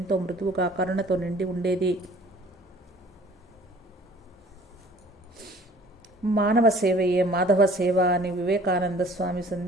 మృదువుగా కరుణతో నిండి ఉండేది. మానవ సేవయే మాధవ సేవ అని వివేకానంద స్వామి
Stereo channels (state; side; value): normal; both; correlation 0.51